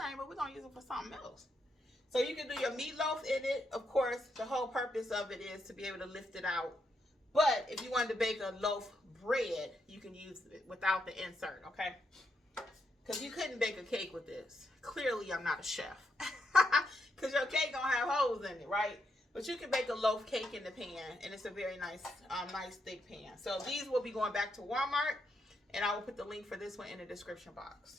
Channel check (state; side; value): normal; both; correlation 0.80